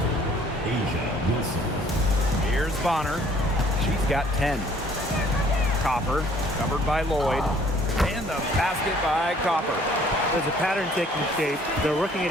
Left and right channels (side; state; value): both; normal; correlation 0.58